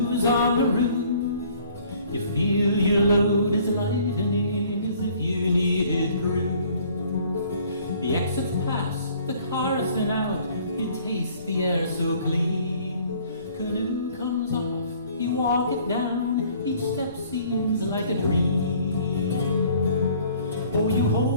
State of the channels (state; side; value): inverted; both; correlation -0.56